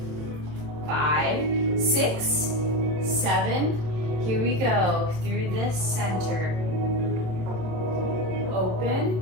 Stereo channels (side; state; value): left; late; 27 ms